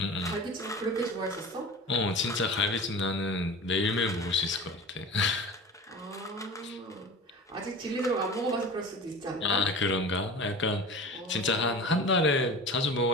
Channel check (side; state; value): both; normal; correlation 0.35